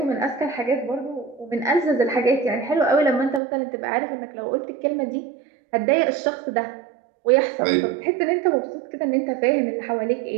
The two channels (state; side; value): drops out; left; at 3.4 s